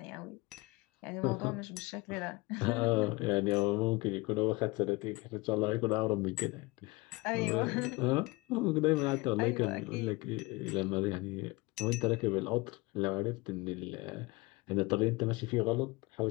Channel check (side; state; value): right; quieter; 23.5 dB